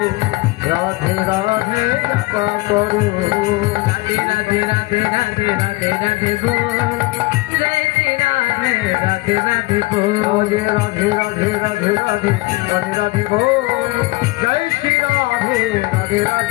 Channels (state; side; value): quieter; right; 21.8 dB